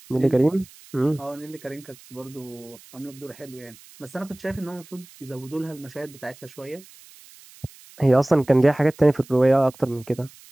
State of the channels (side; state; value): right; noise; hiss, 23 dB below the sound